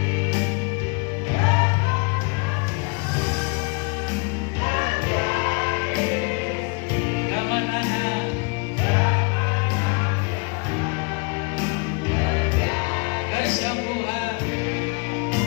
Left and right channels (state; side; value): quieter; right; 32.0 dB